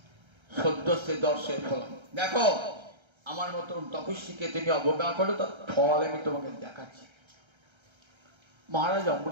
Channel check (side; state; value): left; late; 1.3 ms